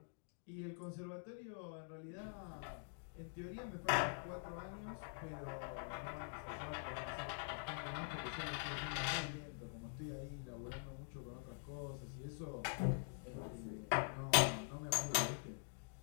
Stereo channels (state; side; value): silent; right; digital silence